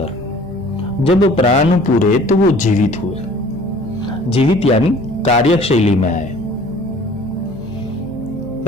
जब प्राण पूरे, तो वो जीवित हुए। जीवित यानी कार्यशैली में आए।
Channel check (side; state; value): left; noise; hum, 22 dB below the sound